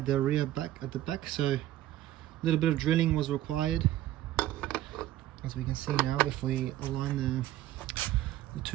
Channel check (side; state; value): left; quieter; 14.1 dB